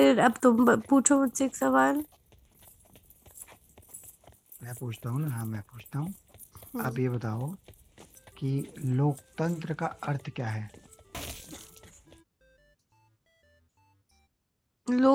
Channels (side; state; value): both; identical; correlation 1.00